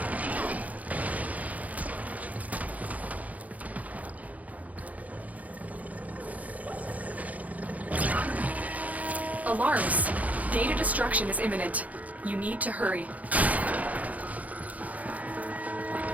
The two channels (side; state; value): left; late; 0.074 ms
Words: Alarms! Data destruction is imminent. You need to hurry.